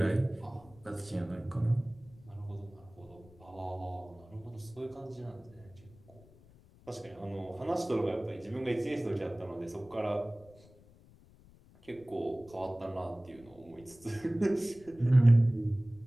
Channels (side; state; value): left; noise; rumble, 25 dB below the sound